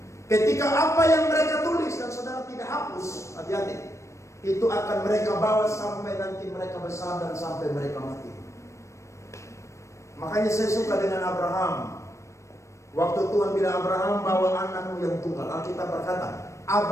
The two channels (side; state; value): right; late; 0.14 ms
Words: Ketika apa yang mereka tulis dan saudara tidak hapus, hati-hati. Itu akan mereka bawa sampai nanti mereka besar dan sampai mereka mati. Makanya saya suka dengan Abraham. Waktu Tuhan bilang Abraham, bawa anakmu yang tunggal. Alkitab berkata,